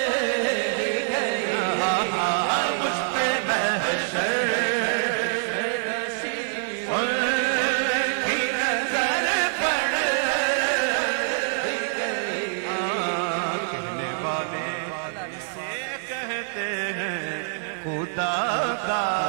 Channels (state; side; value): silent; left; digital silence